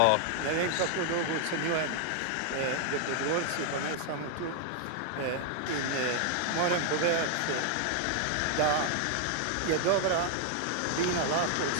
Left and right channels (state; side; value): different; both; correlation 0.00